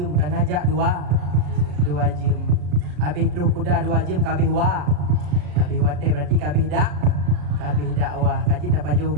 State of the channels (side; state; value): left; late; 34 ms